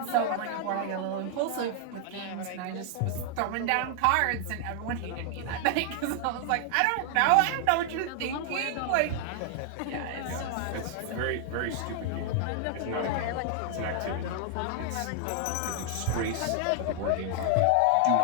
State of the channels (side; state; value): both; different; correlation 0.00